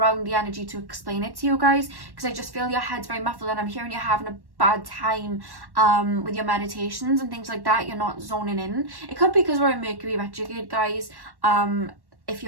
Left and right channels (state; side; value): late; left; 1.1 ms